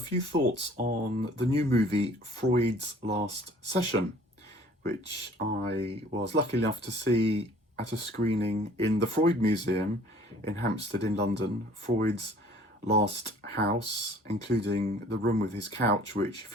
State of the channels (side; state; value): both; normal; correlation 0.53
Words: thoughts on the new movie Freud's Last Session, which I was lucky enough to see at a screening in the Freud Museum in Hampstead in London. Freud's last house, including the room with his couch, which